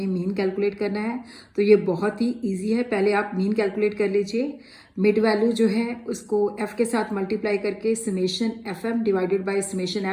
मीन कैलकुलेट करना है। तो ये बहुत ही इजी है, पहले आप मीन कैलकुलेट कर लीजिए। मिड वैल्यू जो है उसको एफ के साथ मल्टीप्लाई करके summation F M divided by summation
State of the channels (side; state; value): both; identical; correlation 1.00